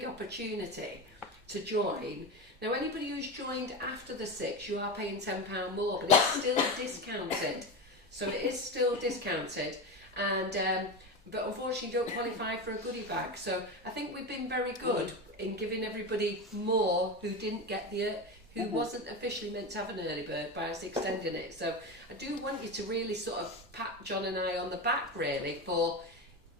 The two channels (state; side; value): normal; both; correlation 0.20